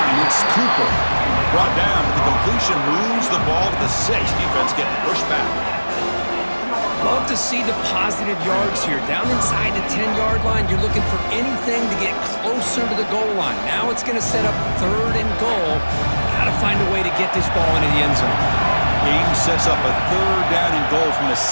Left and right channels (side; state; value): both; inverted; correlation -1.00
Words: It's Cooper. Brought down, but the completion moves the ball to the 6. Defense getting pushed back. Love to see the positive yards here. Down inside the 10-yard line, you're looking for anything to get closer to the goal line. Now it's going to set up third and goal. Got to find a way to get this ball into the end zone. Game sets up a third down and goal from the